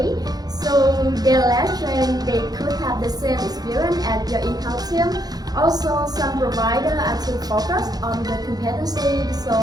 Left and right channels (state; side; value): late; left; 0.19 ms